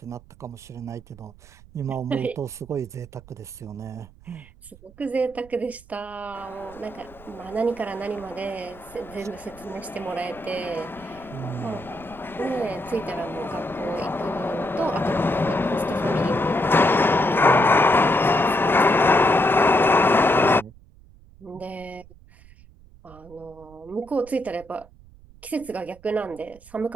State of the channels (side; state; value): right; noise; rumble, 23 dB below the sound